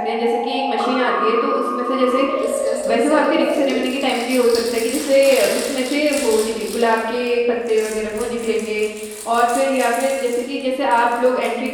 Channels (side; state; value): both; identical; correlation 1.00